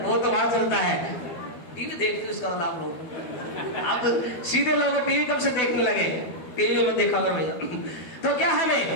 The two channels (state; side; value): late; right; 12 ms